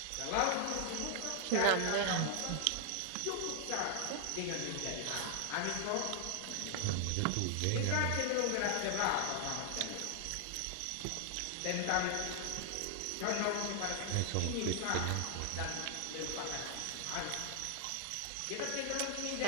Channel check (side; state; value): both; different; correlation 0.00